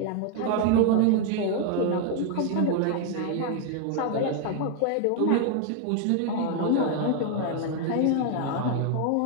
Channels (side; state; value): both; different; correlation 0.00